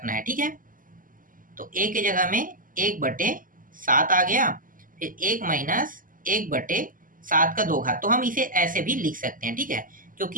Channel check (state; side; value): late; left; 0.40 ms